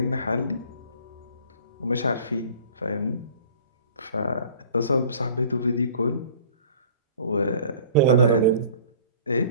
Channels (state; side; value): inverted; both; correlation -0.47